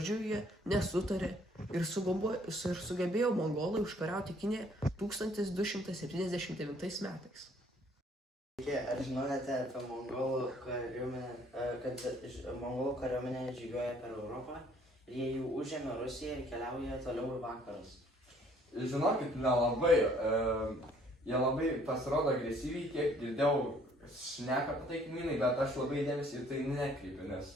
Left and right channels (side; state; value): both; normal; correlation 0.61